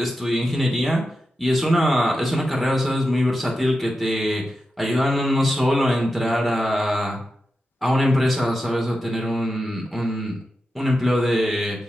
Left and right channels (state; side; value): normal; both; correlation 0.90